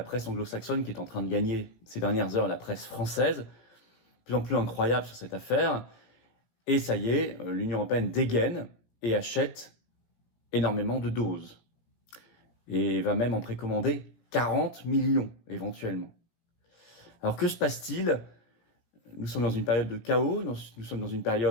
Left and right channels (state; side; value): late; right; 17 ms